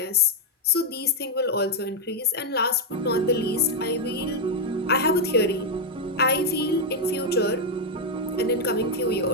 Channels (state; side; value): normal; both; correlation 0.00